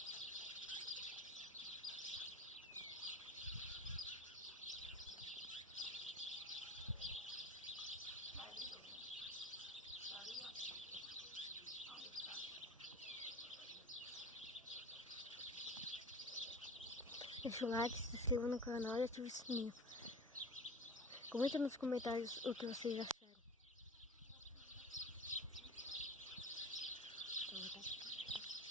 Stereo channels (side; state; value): both; normal; correlation 0.35